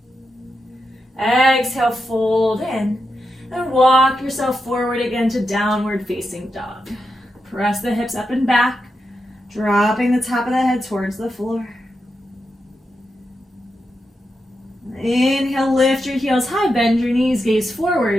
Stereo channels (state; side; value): normal; both; correlation 0.87